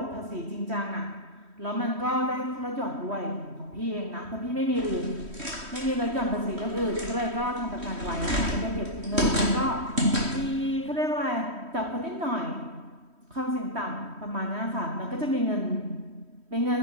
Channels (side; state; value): left; late; 3.1 ms